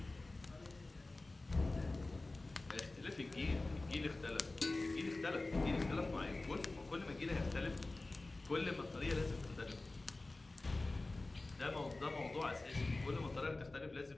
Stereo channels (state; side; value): quieter; right; 3.1 dB